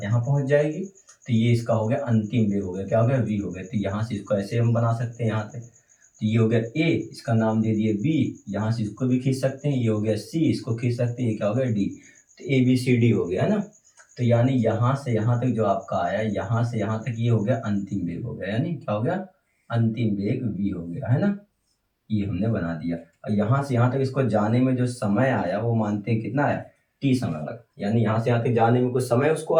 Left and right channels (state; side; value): identical; both; correlation 1.00